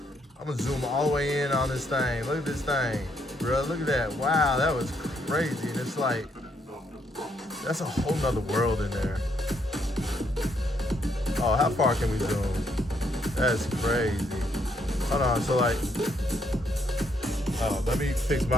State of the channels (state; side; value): normal; both; correlation 0.73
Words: I'm gonna zoom all the way in on this thing. Look at this thing, bro. Look at that. Wow, that was crazy. And it's like, that's a whole nother world in there. Oh, how far can we zoom? That's crazy. Hold on, so like, oh, let me fix